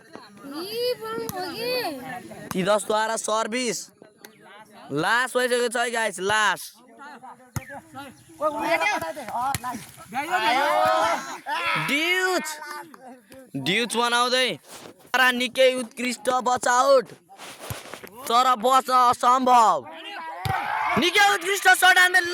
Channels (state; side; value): identical; both; correlation 1.00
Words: तितसद्वारा सर्भिस लास्ट भइसकेको छ गाइज लास्ट ड्युज बनाउँदै निकै उत्कृष्ट बचाउट तर बच्न असम्भव निकै उत्कृष्ट सट हान्दै